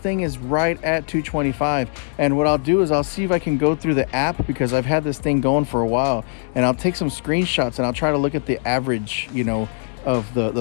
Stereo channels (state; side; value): silent; right; digital silence